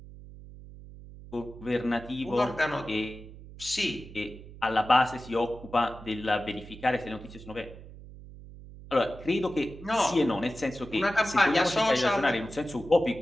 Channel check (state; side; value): noise; right; hum, 16 dB below the sound